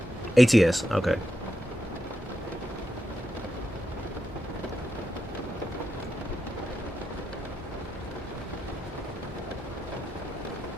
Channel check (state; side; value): normal; both; correlation 0.85